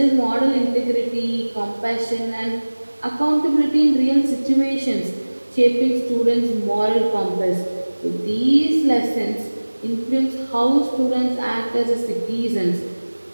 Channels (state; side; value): inverted; both; correlation -1.00